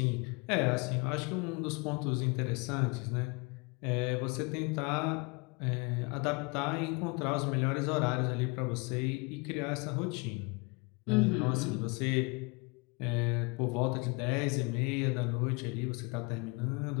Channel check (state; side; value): quieter; right; 30.0 dB